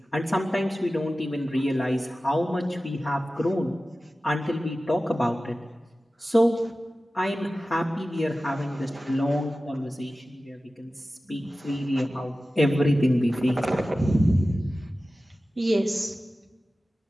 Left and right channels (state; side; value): normal; both; correlation 0.96